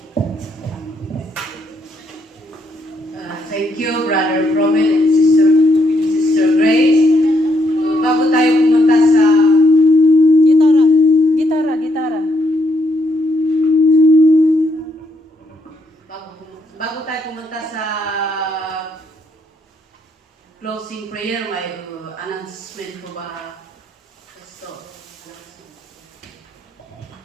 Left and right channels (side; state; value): both; normal; correlation 0.75